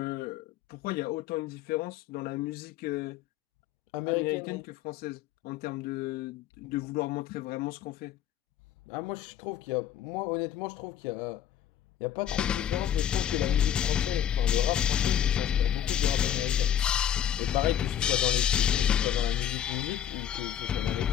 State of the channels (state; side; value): quieter; right; 10.3 dB